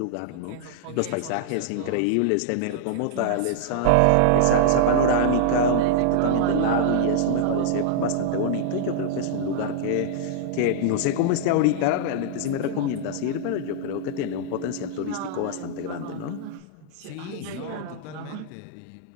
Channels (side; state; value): both; different; correlation -0.01